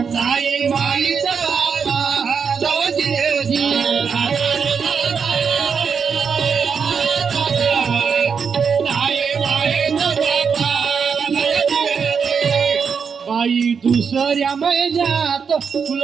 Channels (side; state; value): left; quieter; 6.2 dB